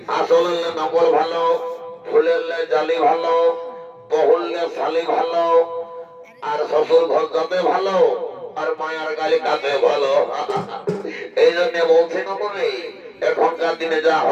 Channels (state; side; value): identical; both; correlation 1.00